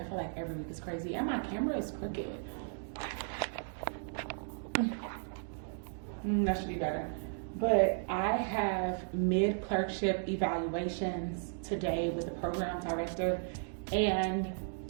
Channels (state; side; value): silent; left; digital silence